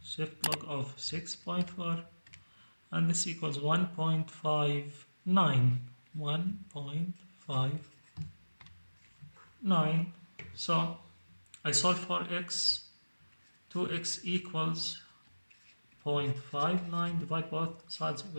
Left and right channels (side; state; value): both; inverted; correlation -1.00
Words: shift log of 6.4, and this equals 1.59. 1.59. So I solve for x. 2x equals 0.59. Divide both sides of the